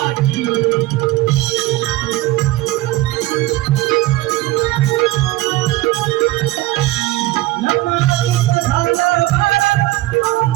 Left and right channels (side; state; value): left; quieter; 17.3 dB